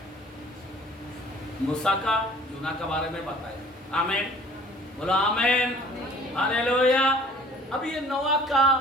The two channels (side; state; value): both; normal; correlation 0.51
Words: मूसा का, यूना के बारे में बताया। आमीन, बोलो आमीन, हालेलुया। अब ये नोआ